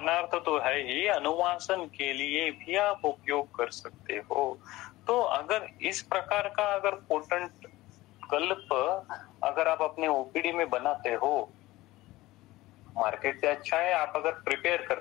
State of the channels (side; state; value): right; quieter; 18.3 dB